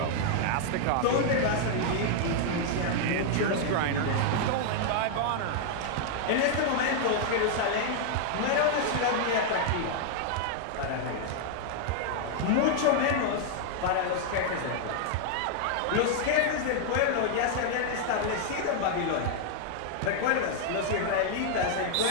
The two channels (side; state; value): both; different; correlation -0.01